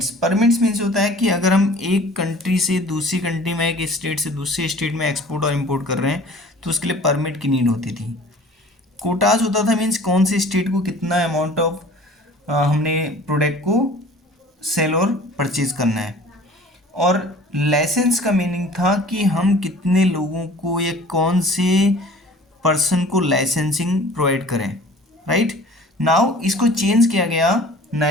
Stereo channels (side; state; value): both; normal; correlation 0.47